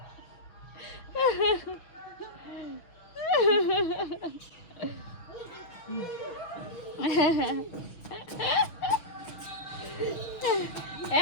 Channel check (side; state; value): right; late; 6.2 ms